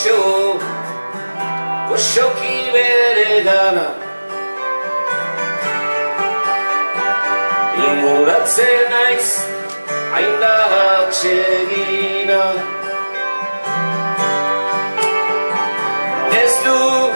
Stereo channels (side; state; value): both; inverted; correlation -1.00